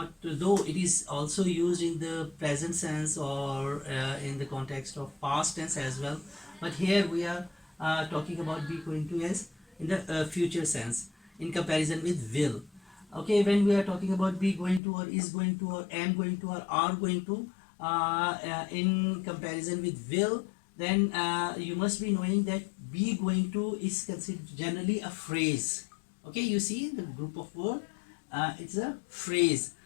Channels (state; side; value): drops out; right; at 14.8 s